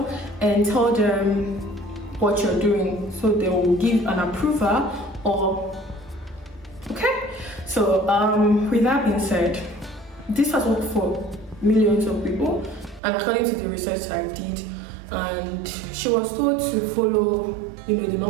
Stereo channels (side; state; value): left; drops out; at 13.0 s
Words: and tell them what you're doing, so they will give an approval. Or okay, so with that being said, this has worked for millions of people, and according to the research I did, and she was told to follow the